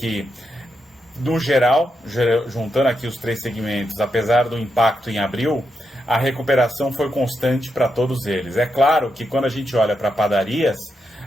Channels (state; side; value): normal; both; correlation 0.84